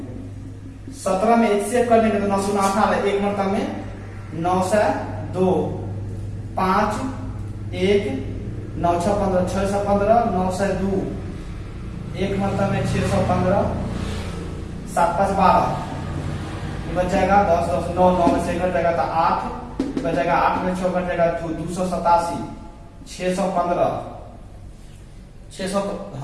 में एचसीएफ कर देंगे तो 9 गुना 18, एक मरतबा में 9 से 2 5 1 9 6 15 6 से 15 9 से 2 एक मरतबा में 615 7 5 12 बच जाएगा 10 10 9 9 में से कट जाएगा तो 8 बच जाएगा, 8 में 6 कट जाएगा 287 615 600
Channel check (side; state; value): both; identical; correlation 1.00